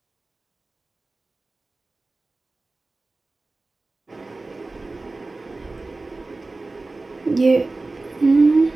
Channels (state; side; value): quieter; left; 3.3 dB